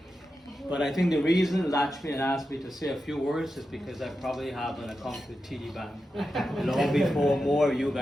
But I think the reason Lakshmi had asked me to say a few words is because I probably have an account with TD Bank long before more of you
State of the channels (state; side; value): normal; both; correlation 0.90